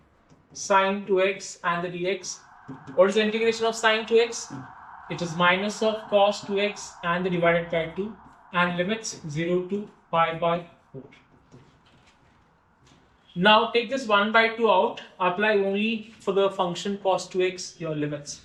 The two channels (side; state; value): both; identical; correlation 1.00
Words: sine 2x and the dx. What is the integration of sine 2x? It is minus of cos 2x and the divided by 2, and limits 0 to pi by 4. Now take this 1 by 2 out, apply only for the function cos 2x your limits.